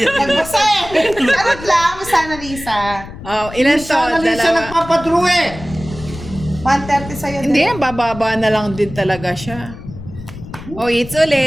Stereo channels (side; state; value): left; noise; rumble, 14 dB below the sound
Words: eh. Charot lang, Miss Annalisa. Oh, ilan to? Sana rin siya Dalawa. nagpapadrew eh! 130 sa'yo. Hindi, bababa na lang din talaga siya. Oh, it's